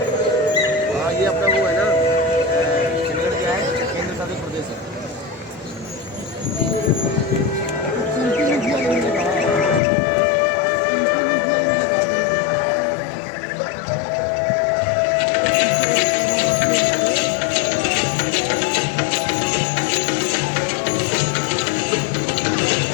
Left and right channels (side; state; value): right; drops out; at 9.8 s